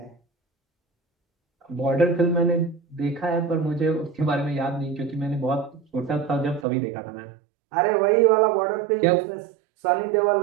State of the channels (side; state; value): left; drops out; at 6.7 s